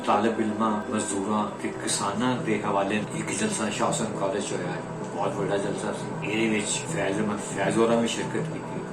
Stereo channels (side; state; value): both; identical; correlation 1.00